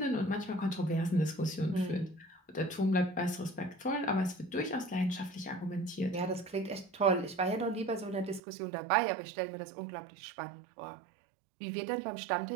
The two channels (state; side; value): drops out; left; at 8.4 s